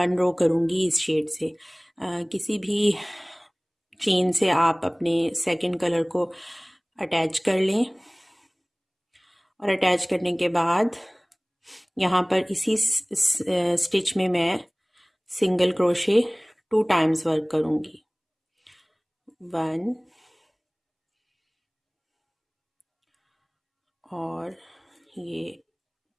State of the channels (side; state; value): both; identical; correlation 1.00